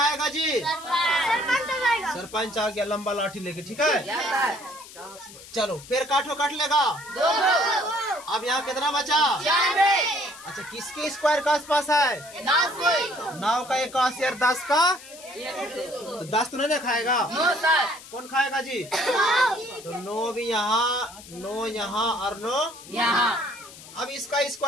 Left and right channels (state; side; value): noise; left; hiss, 17 dB below the sound